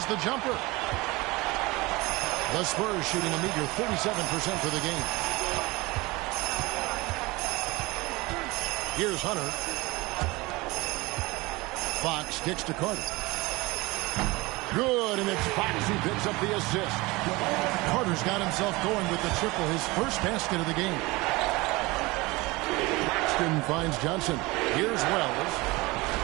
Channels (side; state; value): left; quieter; 22.6 dB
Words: the jumper. The Spurs shooting a meager 37% for the game. Here's Hunter. Fox kicks to Carter. Good, and it's Fox who picks up the assist. Carter's got himself going with the triple, his first basket of the game. Claxton finds Johnson. Here's Wells.